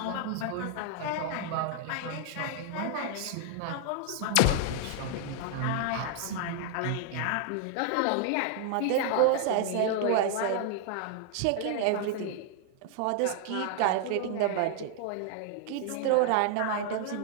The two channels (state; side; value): different; both; correlation 0.00